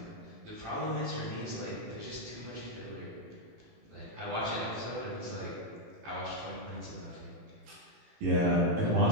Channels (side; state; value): left; late; 18 ms